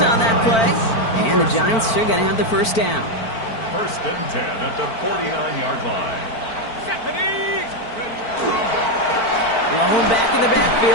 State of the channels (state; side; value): late; right; 4.5 ms